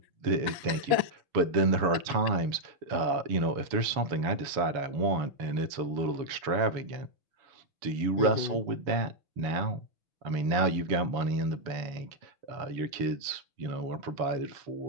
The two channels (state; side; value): late; left; 7.0 ms